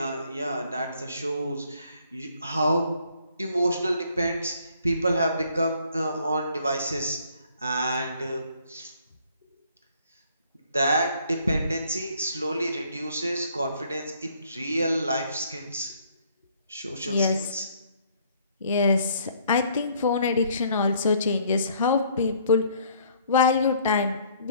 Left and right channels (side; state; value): both; inverted; correlation -0.62